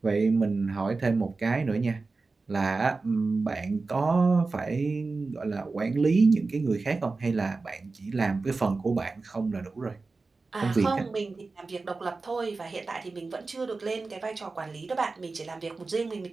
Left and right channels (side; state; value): left; quieter; 3.9 dB